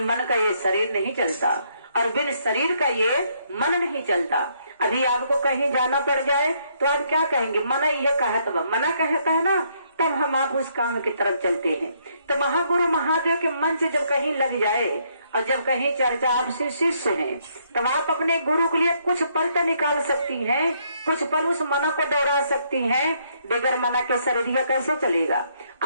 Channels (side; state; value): both; inverted; correlation -0.71